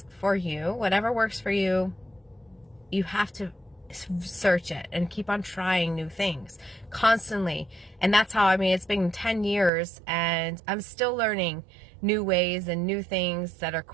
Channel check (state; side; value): drops out; left; at 9.7 s